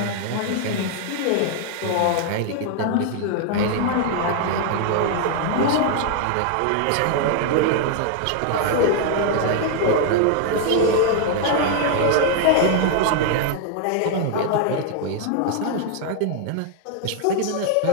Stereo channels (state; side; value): different; both; correlation 0.00